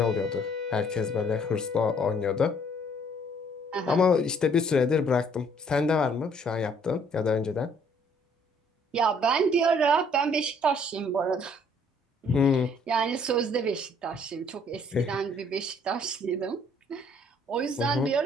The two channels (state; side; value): normal; both; correlation 0.62